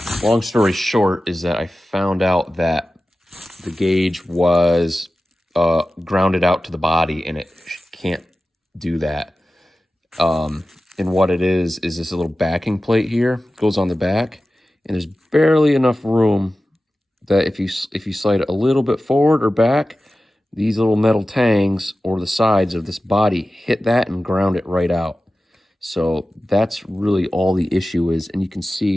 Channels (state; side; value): normal; both; correlation 0.95